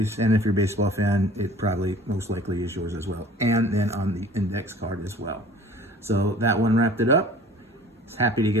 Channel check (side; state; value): both; normal; correlation 0.47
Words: and if you're a baseball fan, it probably most likely is yours as well. And then on the index card as well. So that one wrapped it up. Happy to